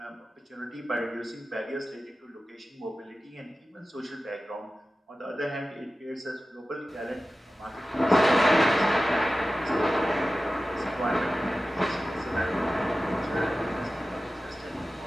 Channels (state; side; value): normal; both; correlation 0.95